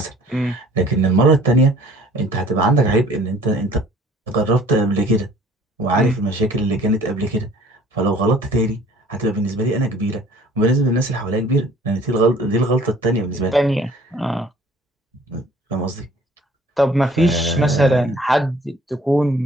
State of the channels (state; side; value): normal; both; correlation 0.53